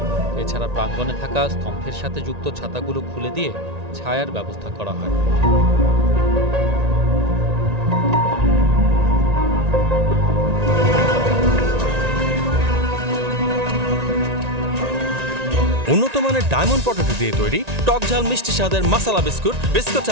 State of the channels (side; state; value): left; late; 1.9 ms